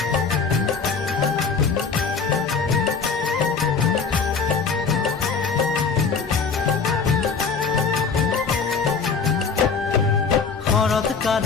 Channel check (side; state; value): right; quieter; 5.3 dB